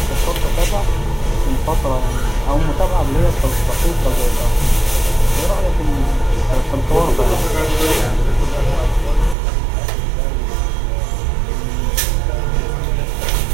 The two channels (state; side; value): drops out; left; at 9.3 s